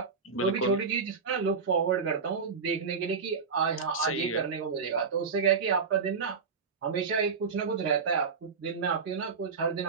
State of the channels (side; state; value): left; quieter; 5.4 dB